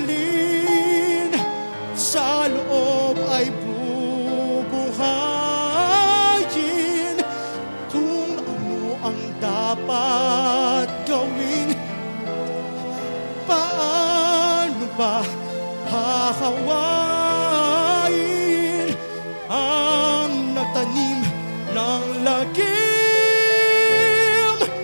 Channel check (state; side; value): inverted; both; correlation -1.00